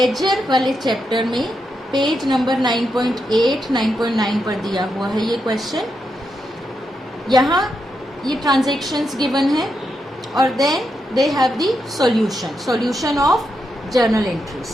वाले चैप्टर में पेज नंबर 9.8, 9.9 पर दिया हुआ है ये क्वेश्चन। यहाँ ये ट्रांजैक्शंस गिवन है और then they have the solution of journal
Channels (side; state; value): both; normal; correlation 0.84